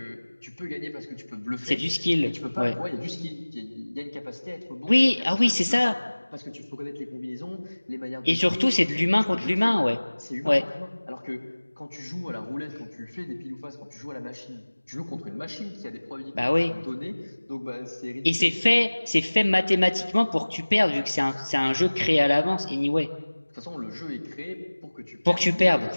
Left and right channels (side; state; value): both; inverted; correlation -1.00